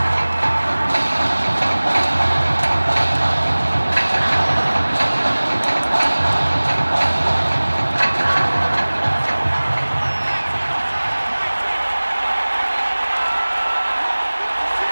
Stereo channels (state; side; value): inverted; both; correlation -1.00